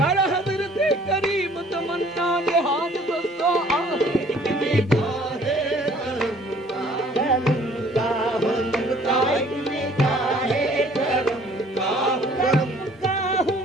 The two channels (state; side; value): normal; both; correlation 0.56